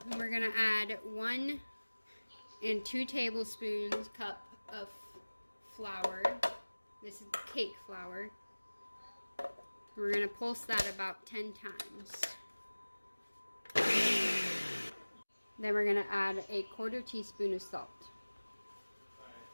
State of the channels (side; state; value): both; inverted; correlation -1.00